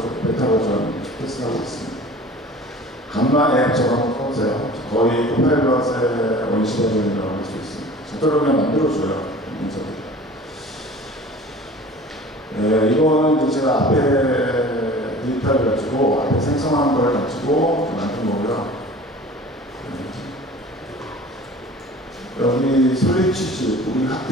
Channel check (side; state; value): both; normal; correlation 0.43